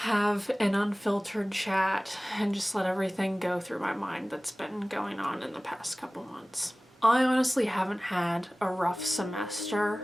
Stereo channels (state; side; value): normal; both; correlation 0.98